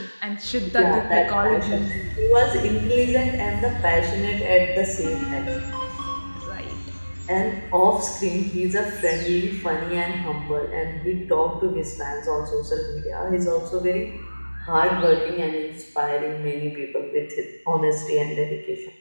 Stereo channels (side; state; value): both; inverted; correlation -1.00